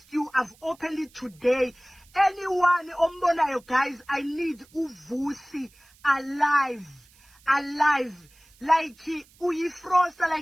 you. I've opened it today. Anyone ombonayo, guys, I need uVusi alive. Like uyi-Froster,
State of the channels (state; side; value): noise; right; hiss, 29 dB below the sound